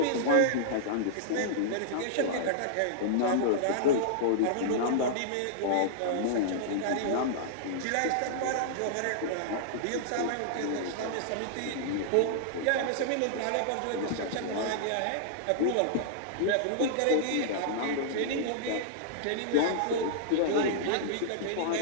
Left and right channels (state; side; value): different; both; correlation -0.01